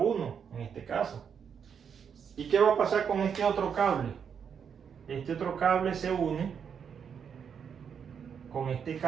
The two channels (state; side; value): quieter; left; 7.3 dB